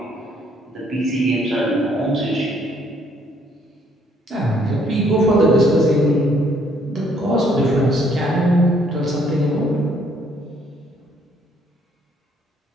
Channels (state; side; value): normal; both; correlation 0.66